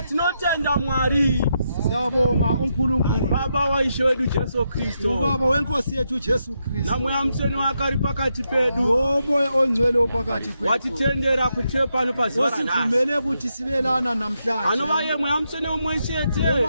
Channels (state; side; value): inverted; both; correlation -0.83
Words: Tinotenda Mwari. Siyabonga uNkulunkulu Baba wa Ishe wedu Jesu Kristo. Ubaba wenkosi yethu Jesu Kristo. Na muyamseni wakari pakati pedu. Umoya ongcwele opakati kwethu. Watitendera kuthepa no paziwa nasi. Osivumele ukuthi sibelana namhlanje. Anobaye muyamseni umweshete.